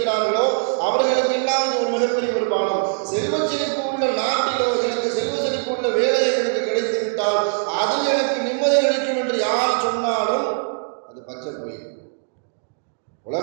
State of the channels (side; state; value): left; silent; 64 dB below the other